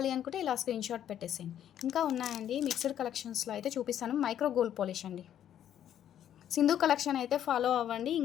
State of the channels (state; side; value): quieter; right; 10.5 dB